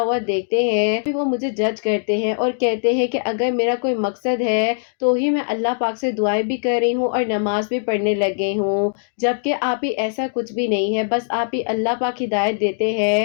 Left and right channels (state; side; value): silent; right; digital silence